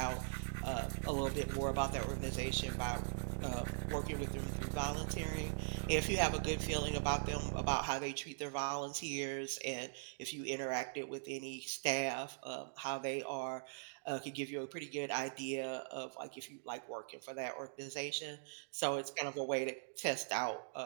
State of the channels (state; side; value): silent; left; digital silence